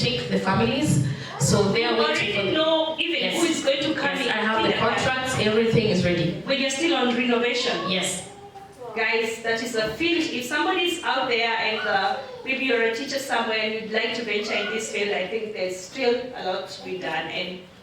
the families. So they are waiting. You already know even who is going to come in. I have the contracts. Everything is ready. When you're still on renovation. Yes. Guys, that is a field. If somebody's out there and maybe you're a teacher somewhere and you'd like to venture in this field, I think there's still a lot to be done. And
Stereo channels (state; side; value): identical; both; correlation 1.00